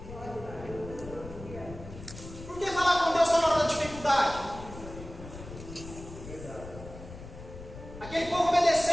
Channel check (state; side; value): noise; left; rumble, 13 dB below the sound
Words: Por que falar com Deus só na hora da dificuldade? Aquele povo